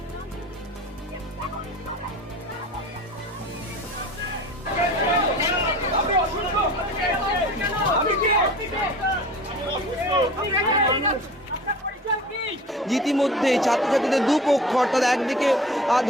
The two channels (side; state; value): both; normal; correlation 0.40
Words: ইতিমধ্যে ছাত্রছাত্রীদের দুপক্ষ অর্থাৎ একদিকে